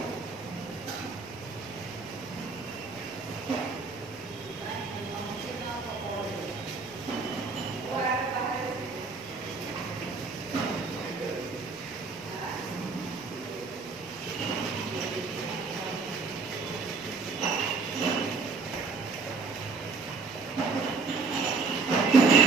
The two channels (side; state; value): left; quieter; 4.4 dB